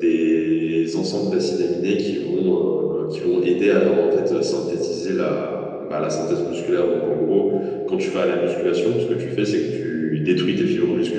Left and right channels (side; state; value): both; identical; correlation 1.00